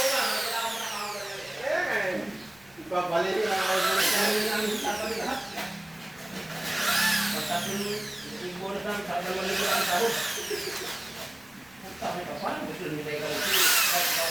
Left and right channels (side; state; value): left; noise; rumble, 28 dB below the sound